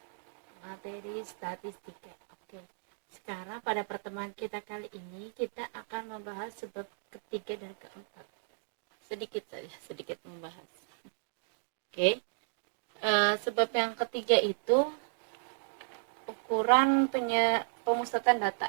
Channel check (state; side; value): silent; left; digital silence